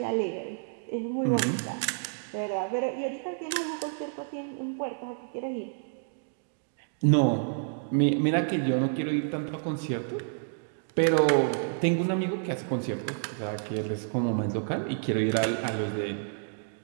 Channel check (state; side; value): silent; left; digital silence